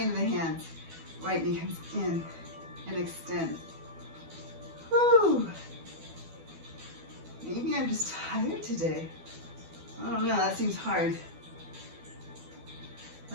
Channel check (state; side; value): late; left; 12 ms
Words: the hands. Right knee comes in and extend. Whew. Maybe I'm just tired today. I don't know, that seems hard.